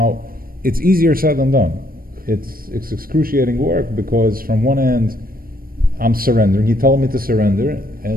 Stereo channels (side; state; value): left; late; 0.42 ms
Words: it's easier said than done. It's excruciating work because from one end, I'm surrendering. He told me to surrender,